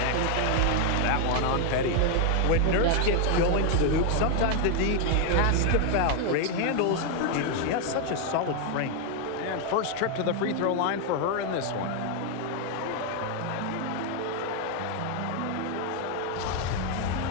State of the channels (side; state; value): both; different; correlation 0.00